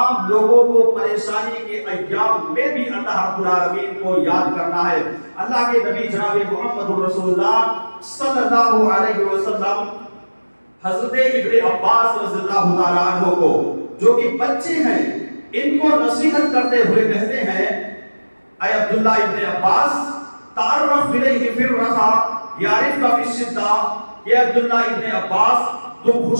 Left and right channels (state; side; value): inverted; both; correlation -1.00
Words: لوگوں کو پریشانی کے ایام میں بھی اللہ رب العالمین کو یاد کرنا ہے۔ اللہ کے نبی جناب محمد رسول اللہ صلی اللہ علیہ وسلم حضرت ابن عباس رضی اللہ تعالیٰ عنہ کو، جو کہ بچے ہیں، ان کو نصیحت کرتے ہوئے کہتے ہیں، اے عبداللہ ابن عباس، تعرف الیہ فی الرخاء یعرفک فی الشدہ، کہ عبداللہ ابن عباس، تم